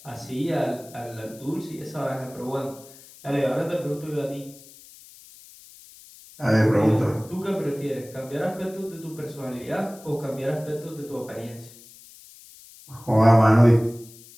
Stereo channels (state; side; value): noise; left; hiss, 21 dB below the sound